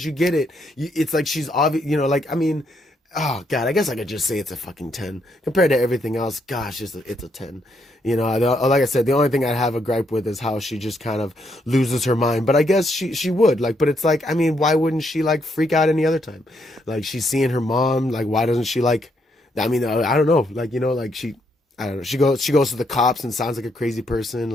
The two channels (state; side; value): normal; both; correlation 0.76